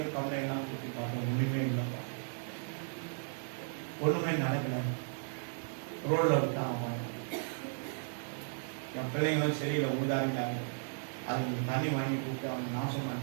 கம்ப்ளைண்ட்லாம் கொடுத்து பார்த்தேன், ஒன்றுமே இல்லைப்பா, ஒன்றுமே நடக்கல, ரோடில் விட்டான் அவன். என் பிள்ளைங்களும் சரியில்லை, உதாரிட்டாங்க, அதுக்கு தண்ணி வாங்கி கொடுத்து அவங்க நாசம்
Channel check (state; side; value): silent; left; digital silence